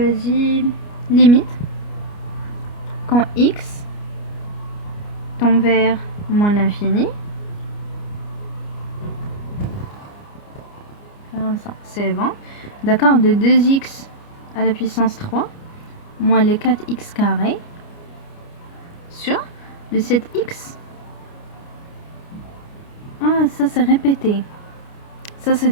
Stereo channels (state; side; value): late; right; 29 ms